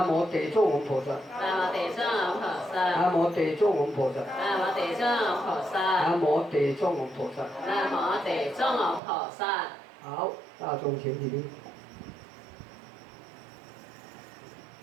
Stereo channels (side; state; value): left; drops out; at 9.0 s